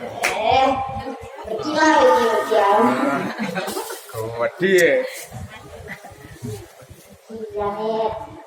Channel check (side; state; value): both; identical; correlation 1.00